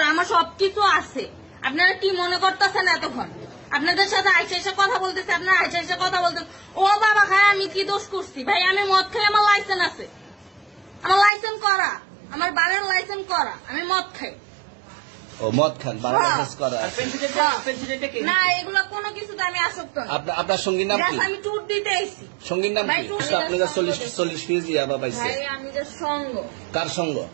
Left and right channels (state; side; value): drops out; left; at 11.3 s